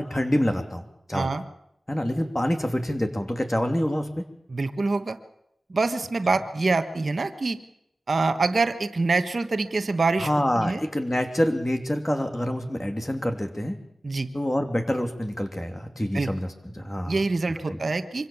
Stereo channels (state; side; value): normal; both; correlation 0.96